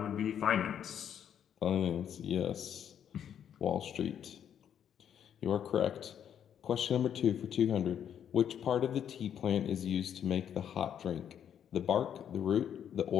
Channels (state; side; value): quieter; right; 9.1 dB